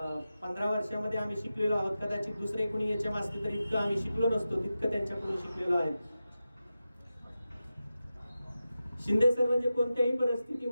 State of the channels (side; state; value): both; inverted; correlation -0.92